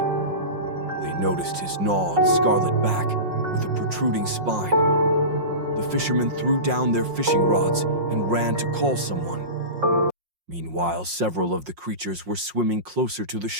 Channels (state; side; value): late; left; 5.6 ms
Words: They noticed his gnawed, scarlet back with a protruding spine. The fishermen threw down their fishing rods and ran to call someone. Meanwhile, several of the creatures were swimming closer to the